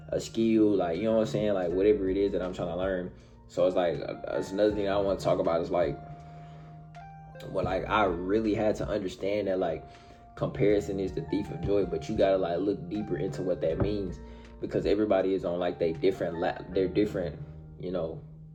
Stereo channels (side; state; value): both; identical; correlation 1.00